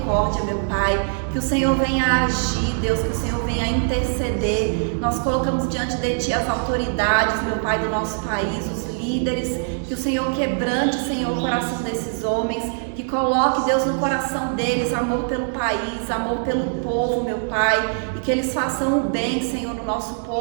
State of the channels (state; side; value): silent; left; 64 dB below the other